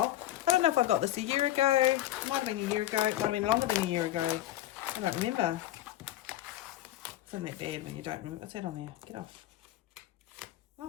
I don't know if I got this a year ago. It might have been a year ago. It might have been longer than a year ago. I don't remember. Isn't that bad when you don't remember? What's that on there? Get off.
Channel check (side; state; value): right; quieter; 14.1 dB